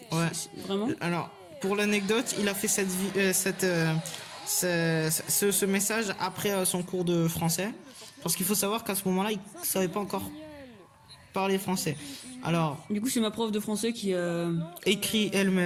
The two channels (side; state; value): both; identical; correlation 1.00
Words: Ouais. Vraiment. Alors, pour l'anecdote, il a fait ce message après son cours de français. Parce qu'il faut savoir qu'à ce moment-là, il savait pas encore parler français. Alors, Du coup, c'est ma prof de français qui écrit